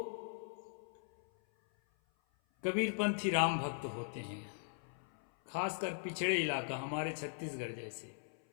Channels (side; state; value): right; silent; 51 dB below the other